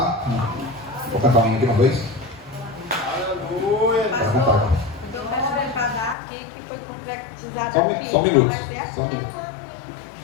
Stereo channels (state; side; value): drops out; right; at 6.2 s